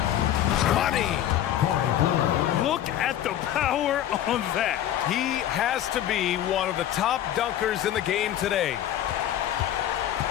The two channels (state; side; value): quieter; right; 11.7 dB